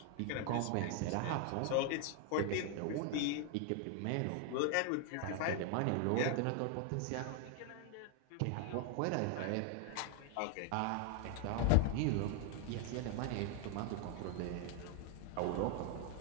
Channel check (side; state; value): both; different; correlation 0.01